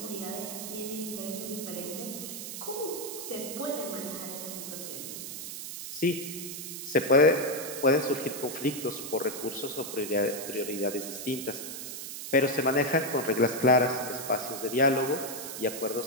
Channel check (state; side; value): noise; right; hiss, 8 dB below the sound